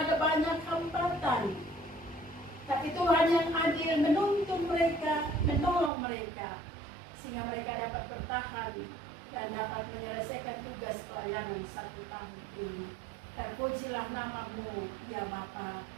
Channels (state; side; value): drops out; left; at 5.9 s